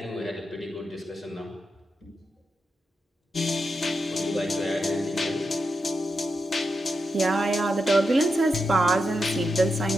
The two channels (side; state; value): both; normal; correlation 0.87